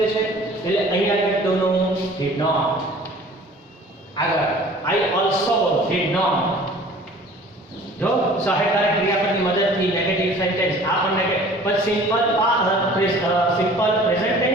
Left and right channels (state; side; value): normal; both; correlation 0.48